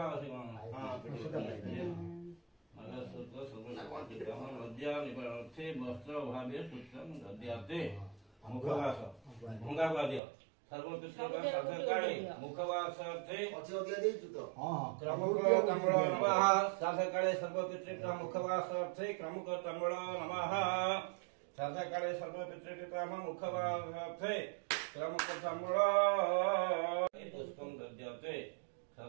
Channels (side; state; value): left; drops out; at 10.2 s